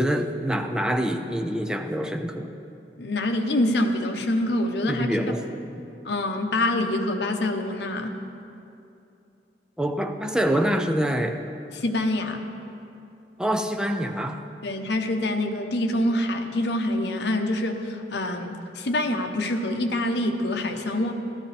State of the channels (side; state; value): both; normal; correlation 0.66